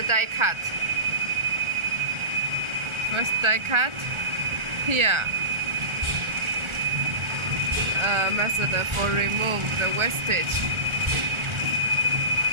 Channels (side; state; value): left; late; 1.4 ms